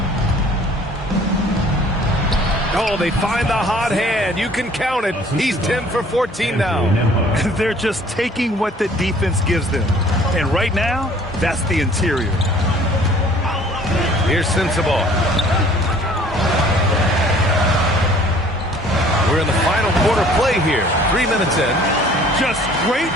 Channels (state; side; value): normal; both; correlation 0.54